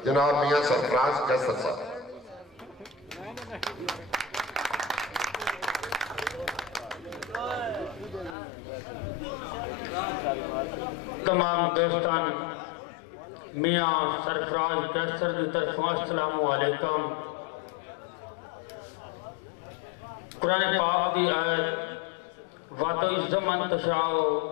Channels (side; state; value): right; drops out; at 8.3 s